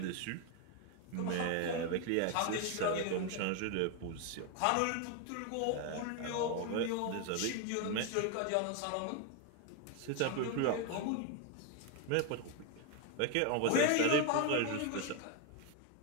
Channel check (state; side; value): different; both; correlation 0.01